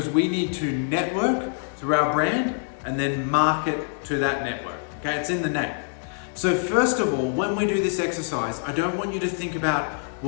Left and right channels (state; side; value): silent; right; 62 dB below the other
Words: we need to network through our brand and then market to that network. Okay, it's in the name. So first of all, when we do this exercise, I don't want you to think about,